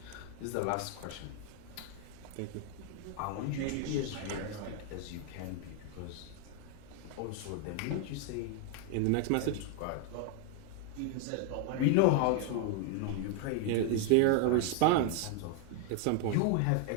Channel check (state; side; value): different; both; correlation 0.01